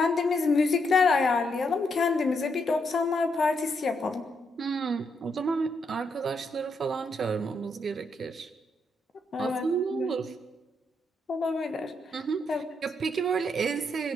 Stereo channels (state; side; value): normal; both; correlation 0.78